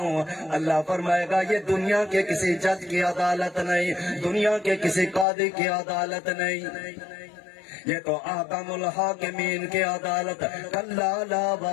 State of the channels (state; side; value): drops out; right; at 5.2 s